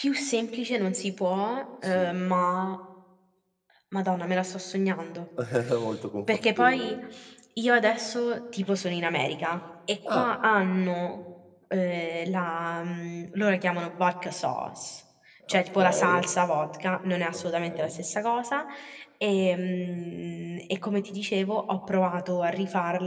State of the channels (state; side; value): identical; both; correlation 1.00